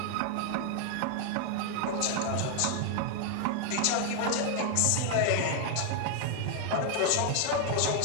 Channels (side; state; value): both; different; correlation 0.00